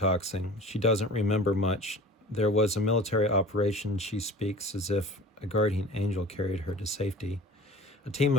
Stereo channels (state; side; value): normal; both; correlation 0.42